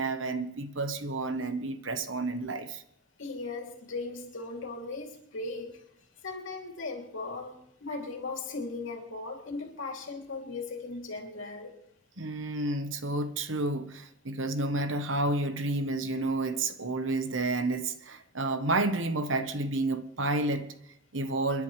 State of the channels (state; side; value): normal; both; correlation 0.18